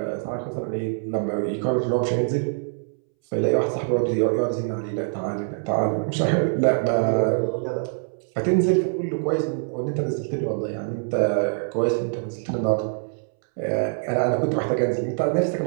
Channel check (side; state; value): left; silent; 62 dB below the other